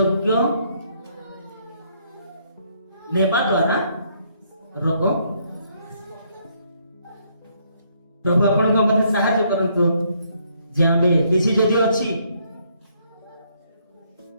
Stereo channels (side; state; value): both; inverted; correlation -0.70